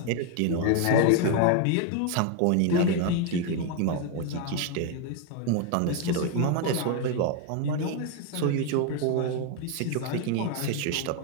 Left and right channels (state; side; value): different; both; correlation 0.01